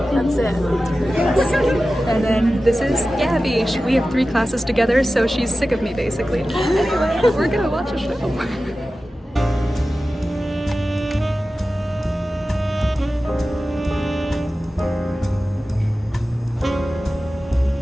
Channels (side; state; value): both; normal; correlation 0.95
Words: That's it. And then this is Gabby. We have 3 classes together, so she's sick of me basically. Anyway, we're gonna watch a show.